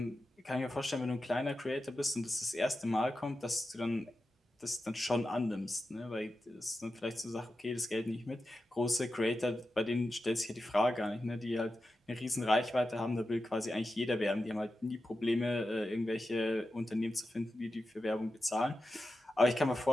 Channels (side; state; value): both; normal; correlation 0.91